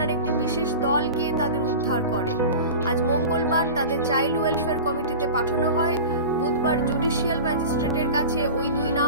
একটি বিশেষ দল গিয়ে তাদের উদ্ধার করে। আজ মঙ্গলবার তাদের চাইল্ড ওয়েলফেয়ার কমিটিতে পাঠানো হয়। বুধবার জুডিশিয়াল ম্যাজিস্ট্রেটের কাছে ওই দুই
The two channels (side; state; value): both; inverted; correlation -0.33